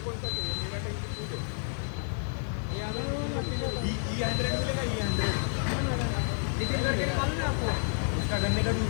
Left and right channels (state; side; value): silent; right; 58 dB below the other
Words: कौन सा चाहिए? मेरा टैंकी फुल है. E100 मिलेगा. E100 नितिन गडकरी मालूम है आपको? उसका गन्ने का